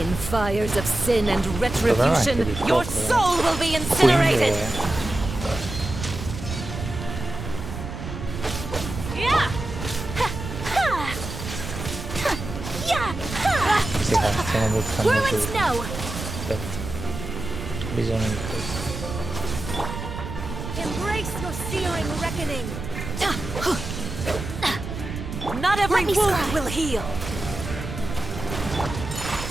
fires of sin and retribution, your soul will be incinerated. Sì, stiamo buttando giù. Aspetta. Bisogno di questo. Embrace your searing reckoning. Not every wound will heal.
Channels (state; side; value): noise; right; rumble, 7 dB below the sound